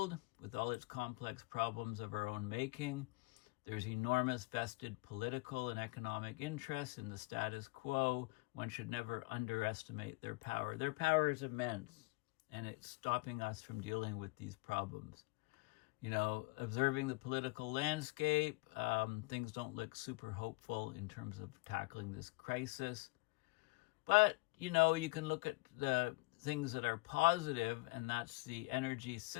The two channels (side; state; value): right; quieter; 24.7 dB